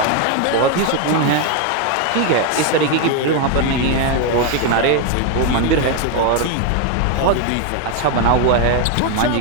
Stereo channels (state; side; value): different; both; correlation 0.01